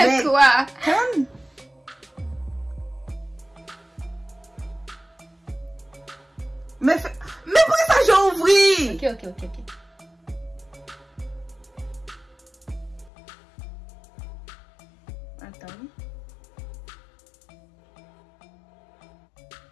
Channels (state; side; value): drops out; right; at 13.1 s